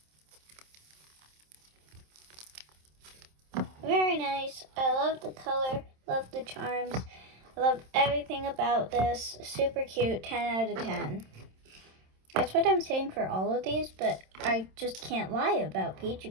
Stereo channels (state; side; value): late; left; 27 ms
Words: Very nice. I love the color, love the charms, I love everything about this. Super cute, 10 out of 10. That's what I'm saying for all of these, but I just can't lie about